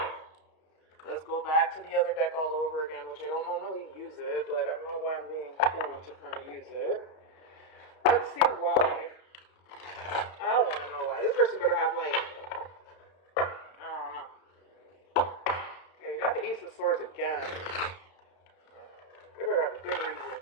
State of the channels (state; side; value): late; right; 32 ms